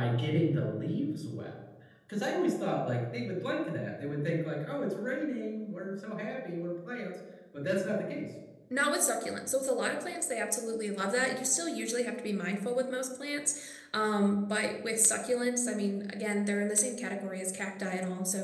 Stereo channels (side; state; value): both; identical; correlation 1.00